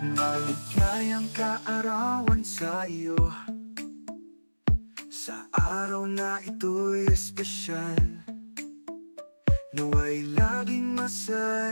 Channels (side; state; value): both; inverted; correlation -1.00